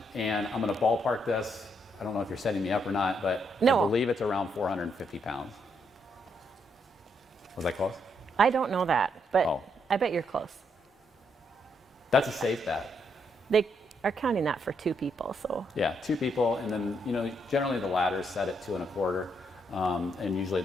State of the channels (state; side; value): normal; both; correlation 0.76